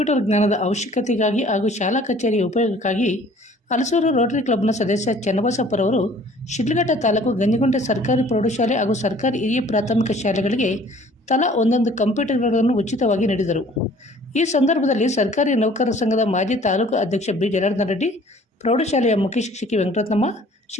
ಜ್ಞಾನದ ಅವಶ್ಯಕತೆಗಾಗಿ ಹಾಗೂ ಶಾಲಾ ಕಚೇರಿಯ ಉಪಯೋಗಕ್ಕಾಗಿ ಹಲಸೂರು ರೋಟರಿ ಕ್ಲಬ್ನ ಸದಸ್ಯ ಚನ್ನಬಸಪ್ಪರವರು ಶಿಡ್ಲಘಟ್ಟ ತಾಲೂಕು ಗಂಜಿಗುಂಟೆ ಸರ್ಕಾರಿ ಪ್ರೌಢಶಾಲೆ ಹಾಗೂ ಸರ್ಕಾರಿ ಹಿರಿಯ ಪ್ರಾಥಮಿಕ ಶಾಲೆಗಳಿಗೆ ತಲಾ ಒಂದೊಂದು ಕಂಪ್ಯೂಟರ್ಗಳನ್ನು ಉಚಿತವಾಗಿ ನೀಡಿದರು. ಈ ಸಂದರ್ಭದಲ್ಲಿ ಸರ್ಕಾರಿ ನೌಕರರ ಸಂಘದ ಮಾಜಿ ತಾಲೂಕು ಅಧ್ಯಕ್ಷ ಬಿ ಜನಾರ್ದನ ರೆಡ್ಡಿ, ಪ್ರೌಢಶಾಲೆಯ ಮುಖ್ಯ ಶಿಕ್ಷಕಿ ವೆಂಕಟರತ್ನಮ್ಮ,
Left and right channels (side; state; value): both; normal; correlation 0.53